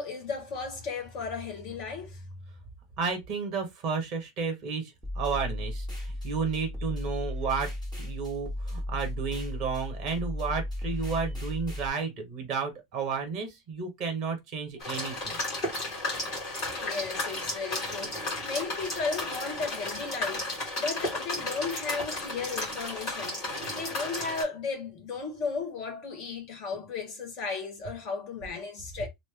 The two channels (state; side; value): normal; both; correlation 0.32